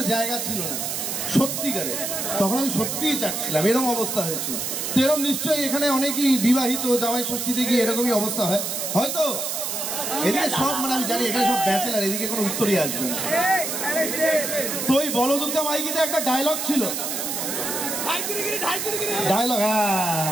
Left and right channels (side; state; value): right; noise; hiss, 3 dB below the sound